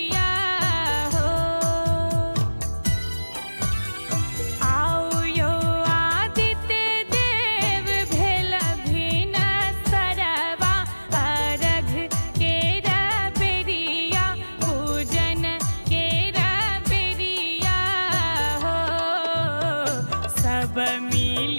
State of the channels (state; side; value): inverted; both; correlation -1.00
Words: हो। आओ यो आदित्य देव भेल भिन सरवा, अर्घ केरा बेरिया पूजन केरा बेरिया हो। सब